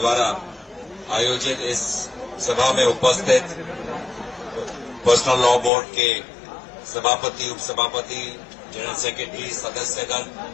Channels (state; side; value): drops out; right; at 5.7 s